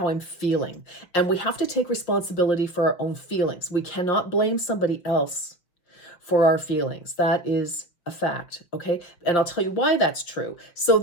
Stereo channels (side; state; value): right; late; 5.6 ms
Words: I'm feeling. And we have to take responsibility for our own feelings. We cannot blame somebody else for our feelings. That is a fact. Okay. And I'll tell you why that's true. So